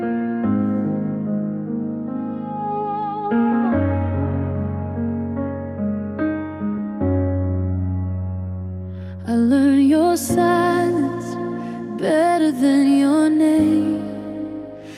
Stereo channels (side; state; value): both; identical; correlation 1.00